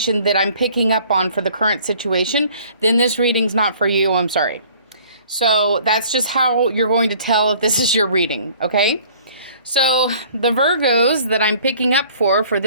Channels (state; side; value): inverted; both; correlation -0.54